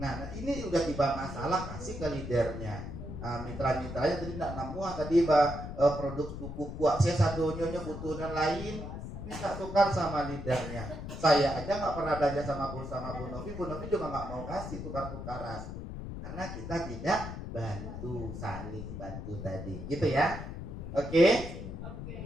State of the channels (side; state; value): left; noise; rumble, 8 dB below the sound